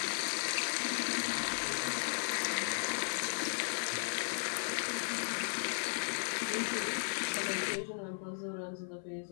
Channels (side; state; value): right; silent; 54 dB below the other